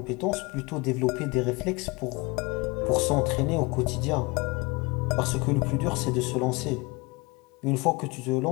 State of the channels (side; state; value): right; quieter; 26.1 dB